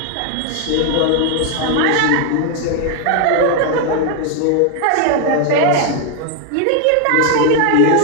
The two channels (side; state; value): both; different; correlation 0.00